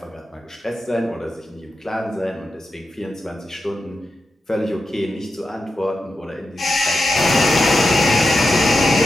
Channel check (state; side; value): normal; both; correlation 0.89